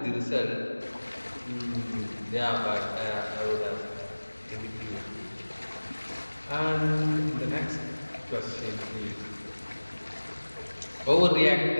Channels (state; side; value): inverted; both; correlation -1.00